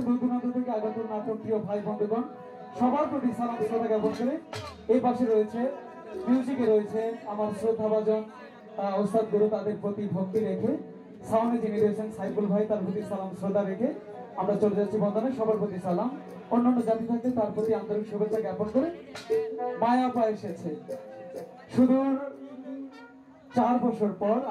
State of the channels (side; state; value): both; identical; correlation 1.00